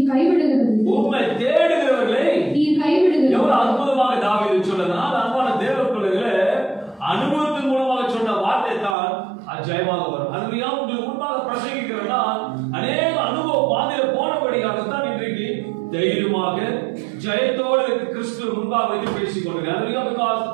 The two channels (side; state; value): left; drops out; at 9.0 s